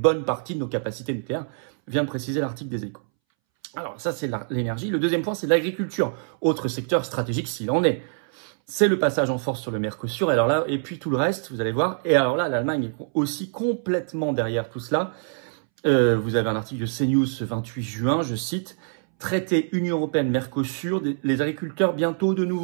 partie de nos capacités nucléaires, vient de préciser l'article des Échos. Alors ça, c'est l'énergie. Le deuxième point, c'est l'agriculture. Autre secteur stratégique s'il en est. C'est le passage en force sur le Mercosur. Alors là, et puis tout le reste, vous allez voir. Et alors là, l'Allemagne est aussi complètement derrière tout cela. Vous avez un article de CNews ce 28 juin, je cite, « Traité Union Européenne-Mercosur, les agriculteurs bientôt de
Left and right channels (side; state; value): left; silent; 62 dB below the other